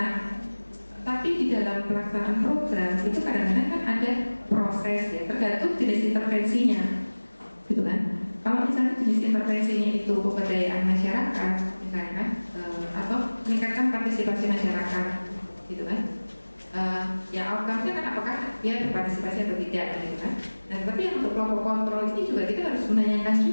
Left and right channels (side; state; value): both; inverted; correlation -1.00